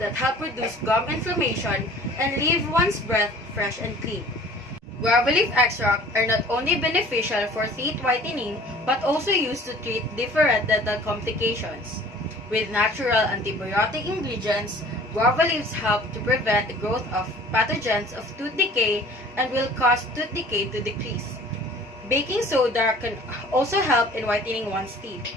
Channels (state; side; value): normal; both; correlation 0.48